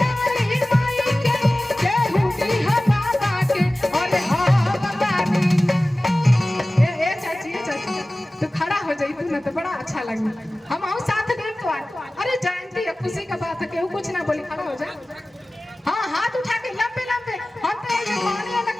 माई के हुडी हम बाबा के, और ए चाची तो खड़ा हो जाई तू ना, तो बड़ा अच्छा लगे, हम आओ साथ दे तो। अरे जयंती है, खुशी का बात है, केहू कुछ ना बोली, खड़ा हो जा। हाँ, हाथ उठा के लंबे लंबे, हम तो ये माने वाला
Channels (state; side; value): normal; both; correlation 0.97